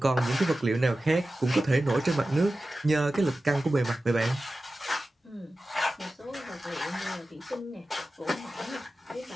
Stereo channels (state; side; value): normal; both; correlation 0.95